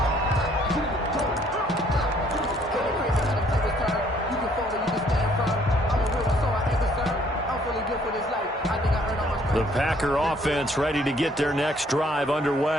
The Packer offense ready to get their next drive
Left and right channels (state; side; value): normal; both; correlation 0.63